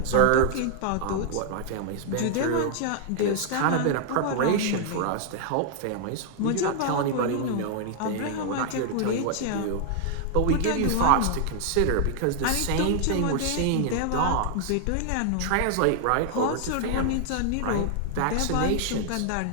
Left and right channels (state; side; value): different; both; correlation 0.00